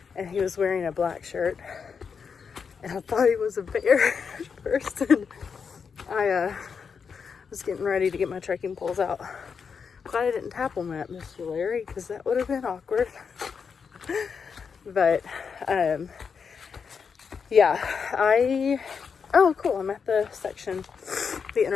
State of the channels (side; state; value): right; quieter; 6.1 dB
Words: and he was wearing a black shirt, and I thought he was a bear at first, and I was getting ready to get my trekking poles out. Glad I didn't tap on that, Mr. Larry, because that would have been awkward. But yeah, oh cool, I'm at the